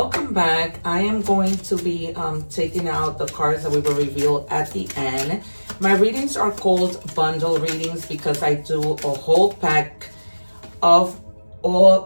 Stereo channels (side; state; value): both; inverted; correlation -1.00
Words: back. I am going to be taking out the cards that we will reveal at the end. My readings are called bundle readings because I do a whole pack of all